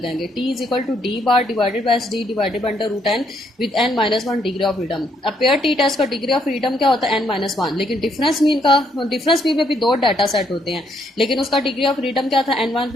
T is equal to D bar divided by D divided by under root N with n minus 1 degree of freedom. अब पेयर टी टेस्ट का डिग्री ऑफ फ्रीडम क्या होता है, n माइनस 1। लेकिन डिफरेंस मीन में भी दो डाटा सेट होते हैं, लेकिन उसका डिग्री ऑफ फ्रीडम क्या था, n1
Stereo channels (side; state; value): both; normal; correlation 0.72